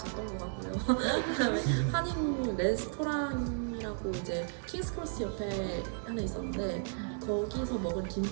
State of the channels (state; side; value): silent; left; digital silence